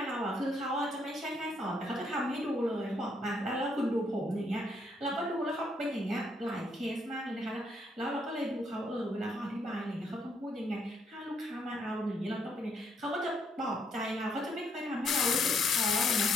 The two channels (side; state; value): both; normal; correlation 0.72